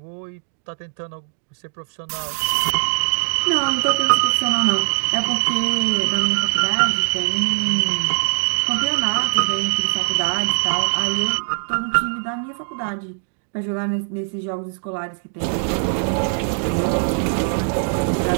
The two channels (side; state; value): left; silent; digital silence